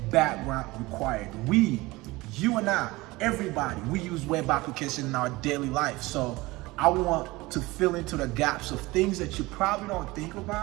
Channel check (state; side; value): quieter; left; 21.0 dB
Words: background required. You and I, everybody, we use web application in our daily life. So I want to fill into the gaps of things that you probably don't think